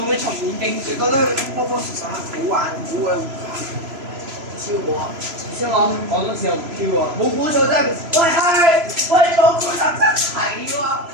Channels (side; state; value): left; late; 3.0 ms